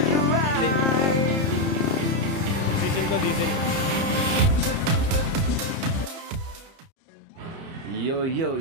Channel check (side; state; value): left; late; 30 ms